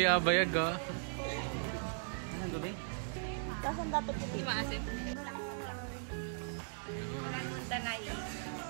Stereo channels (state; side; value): silent; left; digital silence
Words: abayag ah. Anong gabi? Tapos ang dato puti. Maasim. Danay.